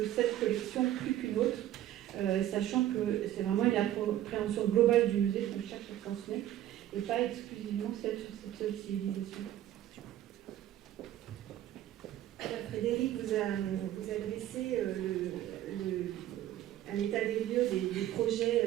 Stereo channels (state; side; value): quieter; left; 12.7 dB